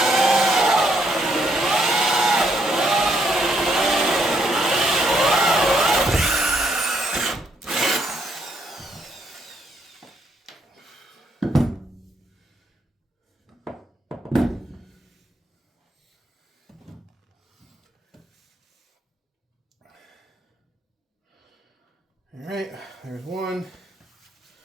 All right, there's one.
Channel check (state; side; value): normal; both; correlation 0.73